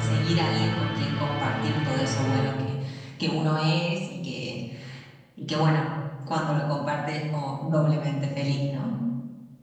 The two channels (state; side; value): identical; both; correlation 1.00